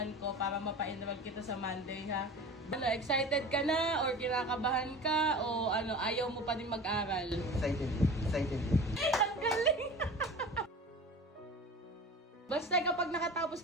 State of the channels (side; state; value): both; normal; correlation 0.36